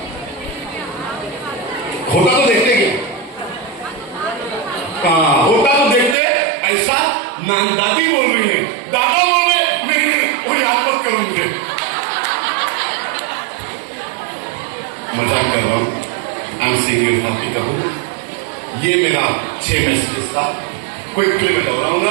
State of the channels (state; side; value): drops out; left; at 6.2 s